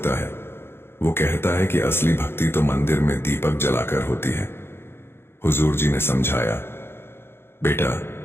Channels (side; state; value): right; late; 0.11 ms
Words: है। वो कहता है कि असली भक्ति तो मंदिर में दीपक जलाकर होती है। हुजूर जी ने समझाया, बेटा,